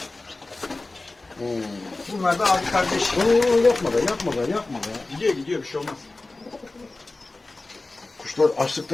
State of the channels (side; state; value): right; quieter; 3.2 dB